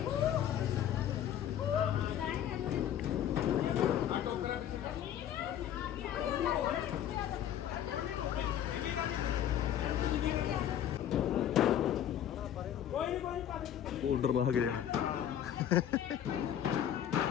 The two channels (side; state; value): right; quieter; 10.4 dB